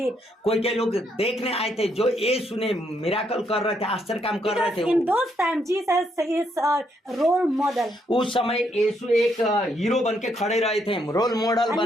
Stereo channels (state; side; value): normal; both; correlation 0.75